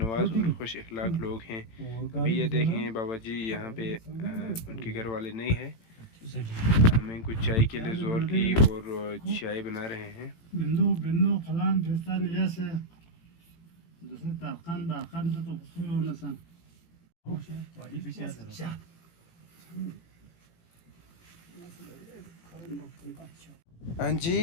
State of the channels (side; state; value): right; late; 18 ms